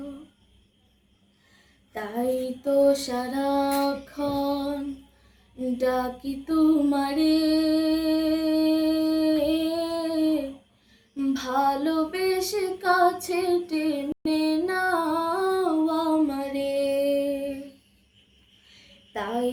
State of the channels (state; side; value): identical; both; correlation 1.00